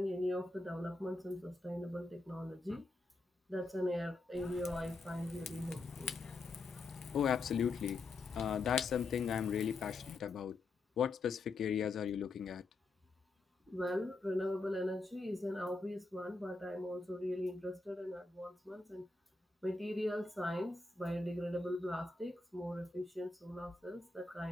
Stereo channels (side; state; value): right; quieter; 3.4 dB